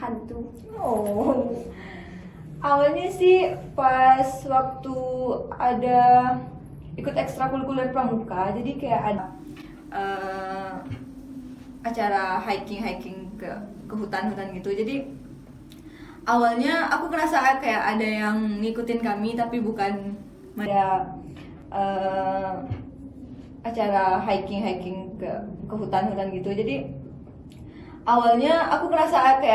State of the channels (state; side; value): identical; both; correlation 1.00